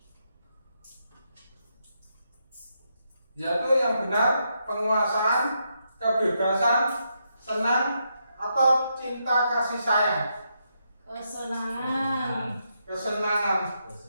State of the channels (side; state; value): both; inverted; correlation -0.81